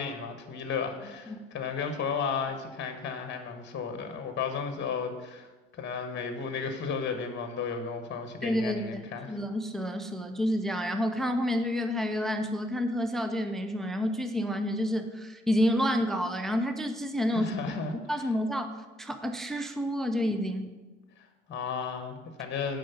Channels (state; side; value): normal; both; correlation 0.64